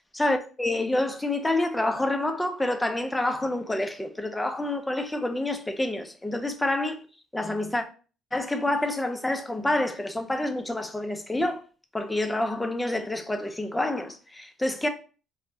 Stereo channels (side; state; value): both; normal; correlation 0.89